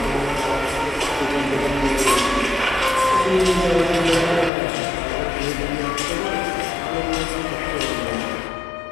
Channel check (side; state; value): right; drops out; at 4.5 s